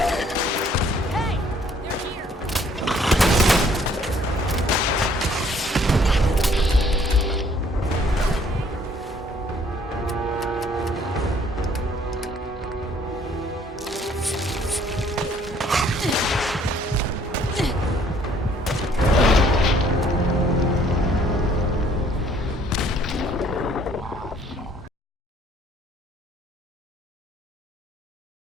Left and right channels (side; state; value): both; normal; correlation 0.61